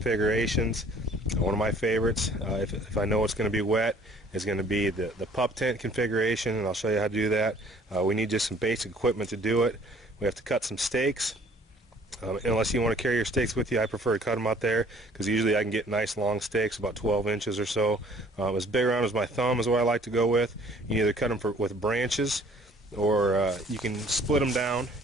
One of my favorites, if I know it's going to be wet, is going to be the pup tent configuration, and I'll show you how to do that. We need just some basic equipment to do it. We have to cut some stakes. Unless you want to carry your stakes with you, I prefer to cut them out there because usually I can get nice long stakes, about 12 inches or so. As big around as my thumb is what I like to go with. You can either cut them with branches, or you can split them down.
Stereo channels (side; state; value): both; normal; correlation 0.55